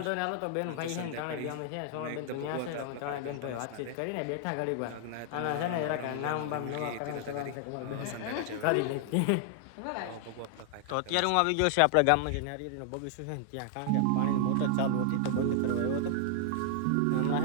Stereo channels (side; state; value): both; different; correlation -0.01